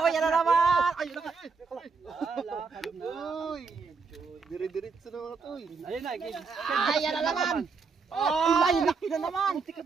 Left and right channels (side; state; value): left; quieter; 5.0 dB